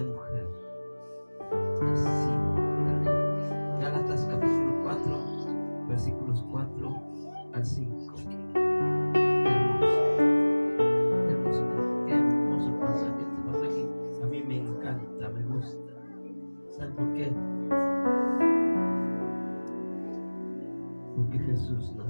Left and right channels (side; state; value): both; inverted; correlation -1.00